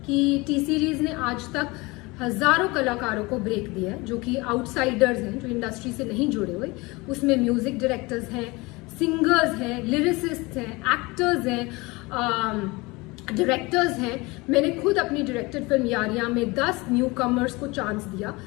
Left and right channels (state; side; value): quieter; right; 23.9 dB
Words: कि टी सीरीज ने आज तक हजारों कलाकारों को ब्रेक दिया है जो कि आउटसाइडर्स हैं, जो इंडस्ट्री से नहीं जुड़े हुए। उसमें म्यूजिक डायरेक्टर्स हैं, सिंगर्स हैं, लिरिसिस्ट हैं, एक्टर्स हैं, डायरेक्टर्स हैं। मैंने खुद अपनी डायरेक्टेड फिल्म यारियां में 10 न्यू कमर्स को चांस दिया।